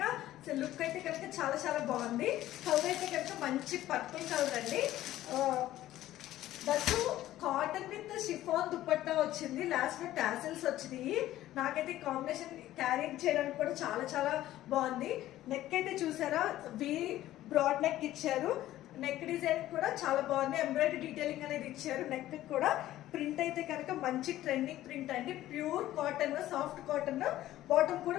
లుక్ అయితే కనుక చాలా చాలా బాగుంది. కలర్ అయితే కనుక మంచి పర్పుల్ కలర్ అండి. That cotton with chiffon dupatta వచ్చింది. లాస్ట్ లో టాసిల్స్ వచ్చినాయి. నాకైతే కాంబినేషన్ క్యారీ చేయడానికి కూడా చాలా చాలా బాగుంది. నెక్ అయితే చూసారా, బ్రాడ్ నెక్ ఇచ్చారు. నెక్ డిజైన్ కూడా చాలా బాగుంది. ఎంబ్రాయిడరీ డీటెయిలింగ్ అనేది ఇచ్చారు. నెక్ కూడా ప్రింట్ అయితే కనుక మంచి ట్రెండింగ్ ప్రింట్ అండి. Pure cotton, soft cotton. Bottom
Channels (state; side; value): quieter; right; 14.3 dB